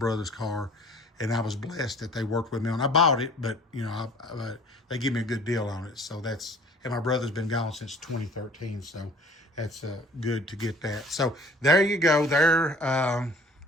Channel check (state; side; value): normal; both; correlation 0.50